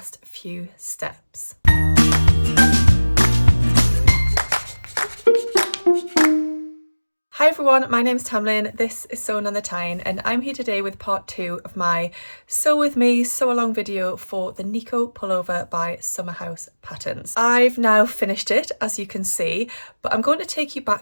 few steps. Hi everyone, my name's Tamlyn, this is Sewn on the Tyne, and I'm here today with part 2 of my Sew With Me sew along video for the Nico pullover by Summerhaus Patterns. I've now finished it, as you can see, but I'm going to take you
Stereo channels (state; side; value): inverted; both; correlation -1.00